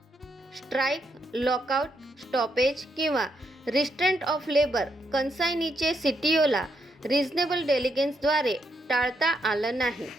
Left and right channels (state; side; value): normal; both; correlation 0.78